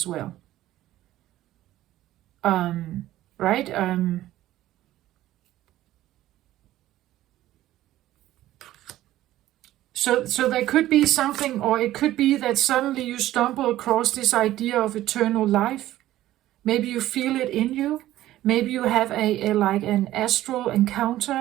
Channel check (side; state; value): left; quieter; 14.5 dB